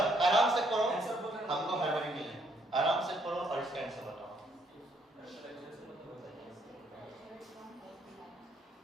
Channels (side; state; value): both; normal; correlation 0.70